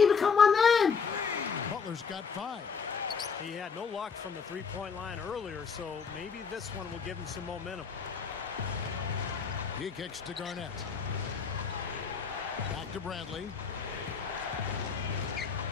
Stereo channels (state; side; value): quieter; right; 5.9 dB